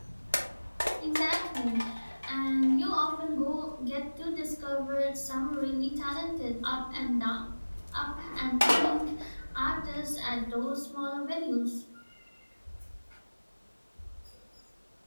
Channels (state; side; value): inverted; both; correlation -1.00